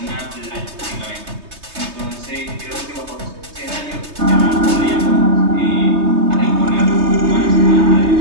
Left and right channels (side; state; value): left; late; 3.3 ms